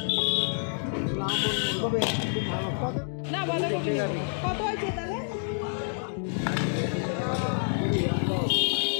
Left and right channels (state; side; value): silent; right; 58 dB below the other